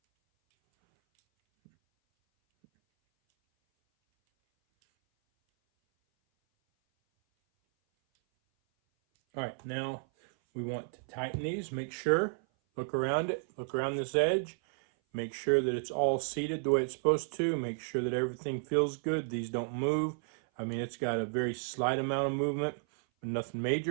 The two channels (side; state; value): left; silent; 56 dB below the other